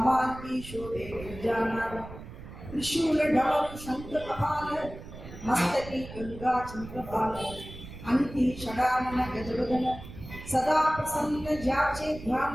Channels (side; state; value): right; noise; rumble, 13 dB below the sound